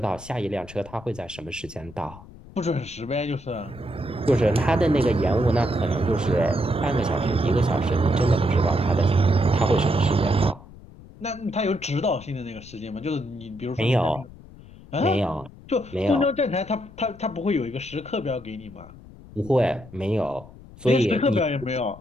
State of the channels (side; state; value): left; noise; rumble, 19 dB below the sound